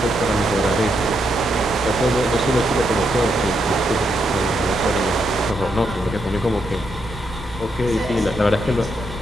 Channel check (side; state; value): both; normal; correlation 0.80